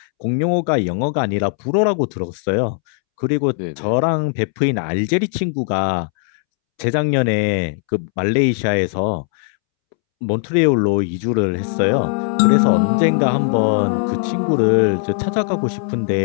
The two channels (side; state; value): right; silent; 67 dB below the other